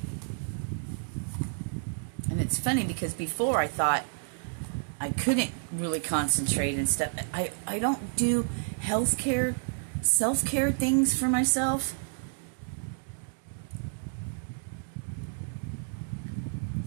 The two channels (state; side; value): silent; left; digital silence